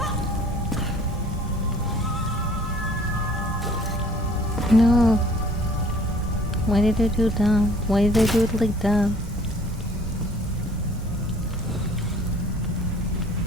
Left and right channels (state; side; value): normal; both; correlation 0.55